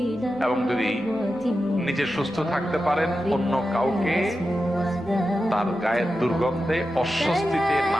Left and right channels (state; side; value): normal; both; correlation 0.91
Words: এবং যদি নিজে সুস্থ থাকতে পারেন, অন্য কাউকে তার গায়ের দুর্গন্ধে অস্বস্তিতে